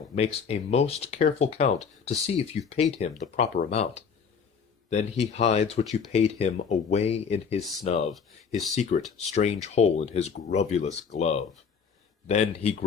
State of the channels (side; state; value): right; quieter; 6.2 dB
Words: makes a most careful count to see if you've paid him the proper amount. Then he hides what you paid him away in his snub, his secret strange hole in his grovulous glove. Then he